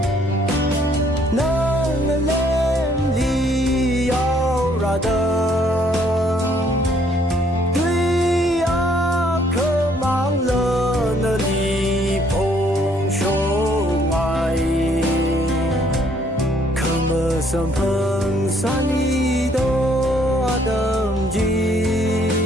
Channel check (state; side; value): normal; both; correlation 0.65